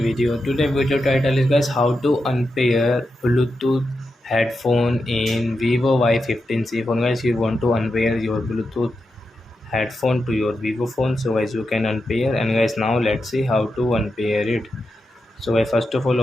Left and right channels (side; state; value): both; normal; correlation 0.88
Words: video. Today video title is guys how to unpair Bluetooth headphone in Vivo Y15c phone. Guys, you want to unpair your Bluetooth headphone to your Vivo phone, so guys you can unpair. And guys, now let's see how to unpair it. So guys, first of all